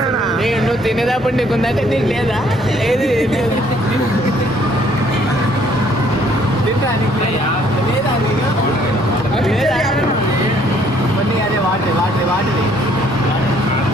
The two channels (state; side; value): normal; both; correlation 0.64